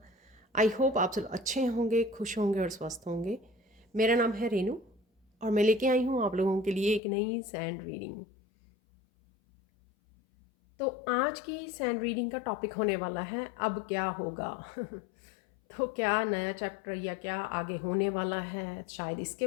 I hope आप सब अच्छे होंगे, खुश होंगे और स्वस्थ होंगे। मेरा नाम है रेनू और मैं लेके आई हूँ आप लोगों के लिए एक नई सैंड रीडिंग। तो आज की सैंड रीडिंग का टॉपिक होने वाला है अब क्या होगा। तो क्या नया चैप्टर या क्या आगे होने वाला है, शायद इसके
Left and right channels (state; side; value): drops out; right; at 7.0 s